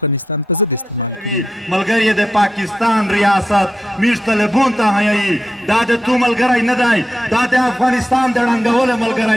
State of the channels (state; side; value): normal; both; correlation 0.87